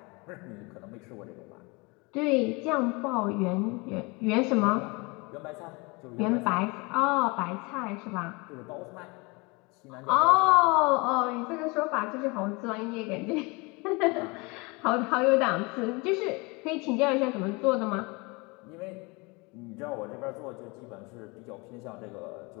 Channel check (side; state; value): right; quieter; 27.3 dB